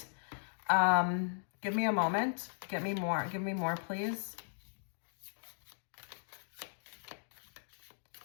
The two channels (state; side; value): silent; right; digital silence